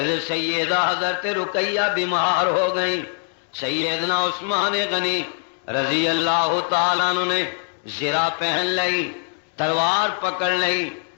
سیدہ حضرت رقیہ بیمار ہو گئی، سیدنا عثمان غنی رضی اللہ تعالیٰ عنہ نے زرہ پہن لی، تلوار پکڑ لی،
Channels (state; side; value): silent; right; 57 dB below the other